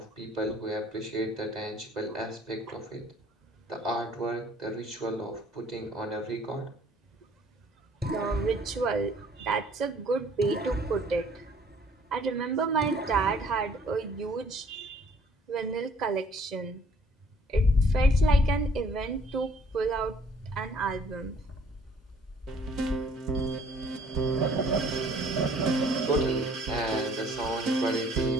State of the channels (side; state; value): both; normal; correlation 0.58